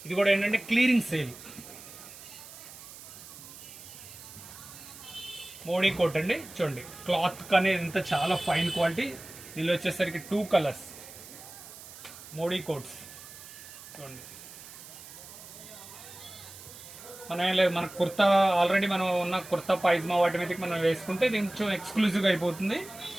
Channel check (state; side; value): noise; right; hiss, 16 dB below the sound